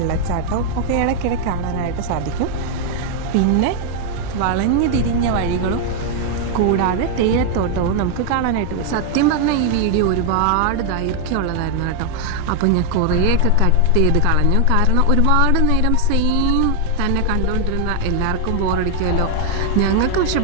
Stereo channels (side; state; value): both; different; correlation 0.00